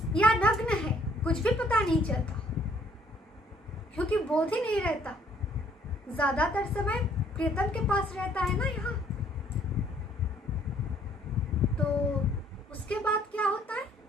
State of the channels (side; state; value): both; normal; correlation 0.62